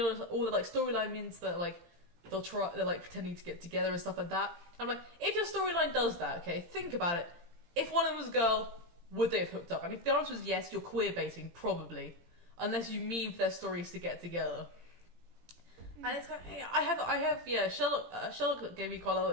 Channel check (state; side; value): late; left; 17 ms